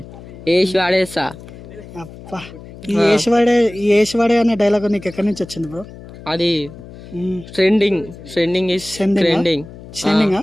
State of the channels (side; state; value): left; noise; hum, 17 dB below the sound